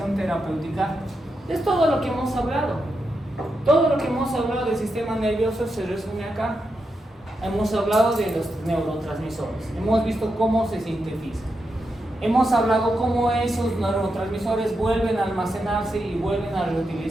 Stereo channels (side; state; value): both; normal; correlation 0.86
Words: terapéutica. Es todo lo que hemos hablado. Todo lo que hemos hablado del sistema nervioso se resume acá. Hemos hablado de los neurotransmisores. Hemos visto cómo se sintetizan. Hemos hablado cómo esos neurotransmisores vuelven a almacenarse y vuelven a